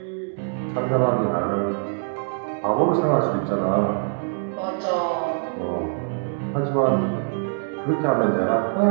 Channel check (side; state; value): left; silent; digital silence